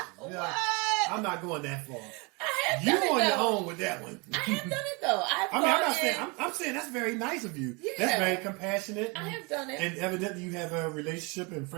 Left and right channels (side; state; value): left; quieter; 29.3 dB